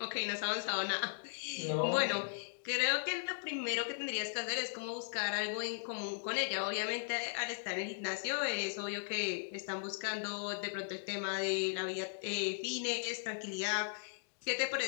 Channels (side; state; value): right; silent; digital silence